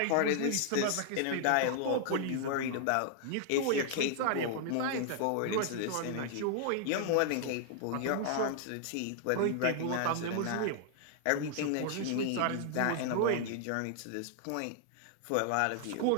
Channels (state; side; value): different; both; correlation -0.01